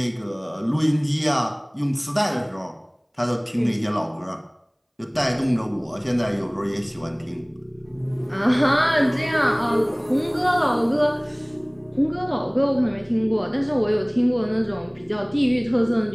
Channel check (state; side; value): identical; both; correlation 1.00